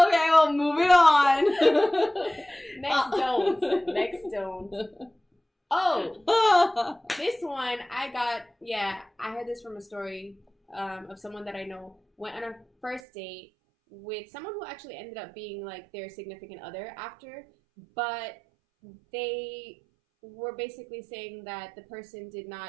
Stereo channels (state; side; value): drops out; left; at 13.0 s